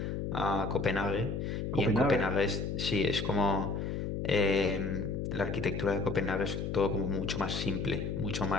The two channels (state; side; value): noise; left; hum, 3 dB below the sound